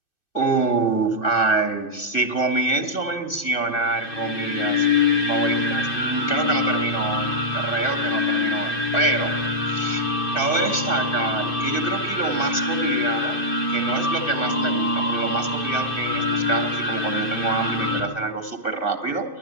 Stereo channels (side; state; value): right; late; 2.6 ms